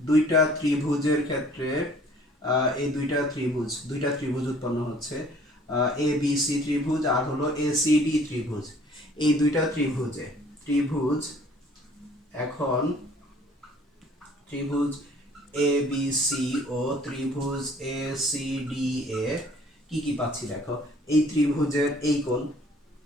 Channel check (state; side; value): normal; both; correlation 0.55